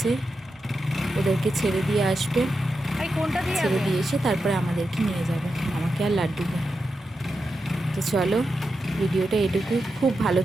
ওদেরকে ছেড়ে দিয়ে আসবে, ছেড়ে দিয়ে এসে তারপরে আমাদেরকে নিয়ে যাবে, আমাকে আর লাড্ডুকে। তো চলো, ভিডিওটা এটুকু। খুব ভালো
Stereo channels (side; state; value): both; normal; correlation 0.88